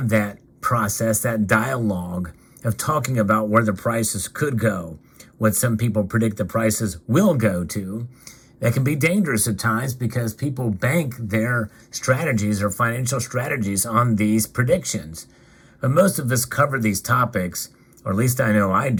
that process, that dialogue of talking about where the prices could go, what some people predict the prices will go to. That can be dangerous at times because people bank their strategies or financial strategies on these predictions. But most of us cover these topics, or at least I know I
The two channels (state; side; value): identical; both; correlation 1.00